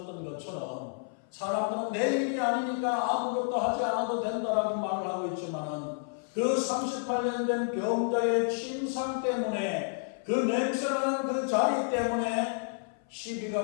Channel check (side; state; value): right; silent; 55 dB below the other